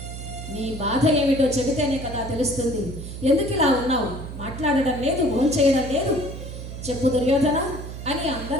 నీ బాధ ఏమిటో చెబితేనే కదా తెలుస్తుంది. ఎందుకు ఇలా ఉన్నావు? మాట్లాడడం లేదు, భోంచేయడం లేదు. చెప్పు దుర్యోధన అని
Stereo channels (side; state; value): right; noise; hum, 10 dB below the sound